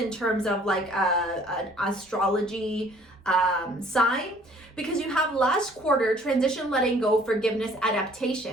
terms of like an astrology sign, because you have last quarter, transition, letting go, forgiveness,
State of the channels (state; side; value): normal; both; correlation 0.56